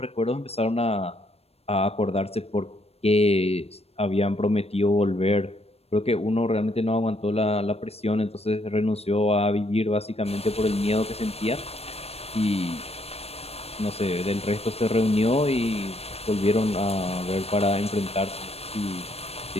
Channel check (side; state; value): right; late; 0.29 ms